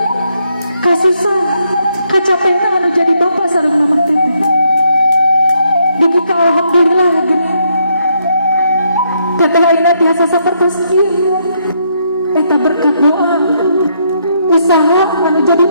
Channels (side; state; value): both; inverted; correlation -0.75